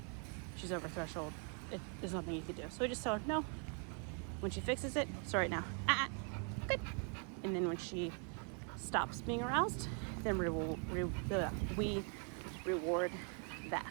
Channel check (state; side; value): quieter; left; 37.5 dB